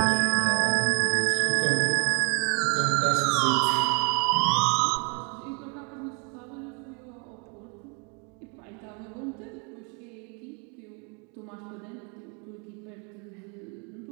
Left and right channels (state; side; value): quieter; left; 35.5 dB